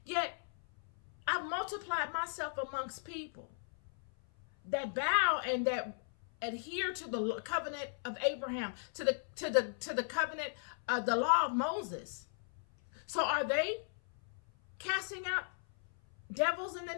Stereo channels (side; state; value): right; silent; 53 dB below the other